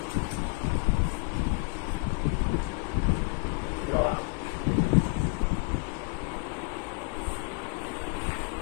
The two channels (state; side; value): quieter; right; 29.2 dB